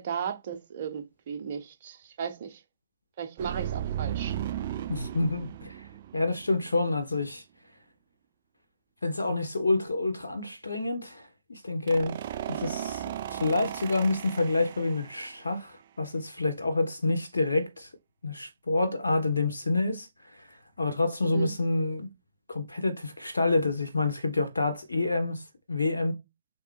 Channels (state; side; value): inverted; both; correlation -0.82